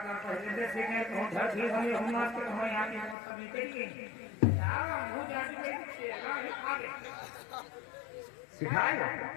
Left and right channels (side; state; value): right; drops out; at 3.2 s